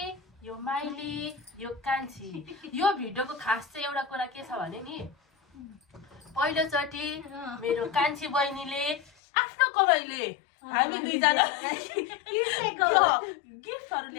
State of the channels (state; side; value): drops out; right; at 9.1 s